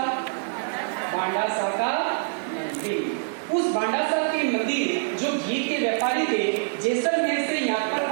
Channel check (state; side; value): silent; left; digital silence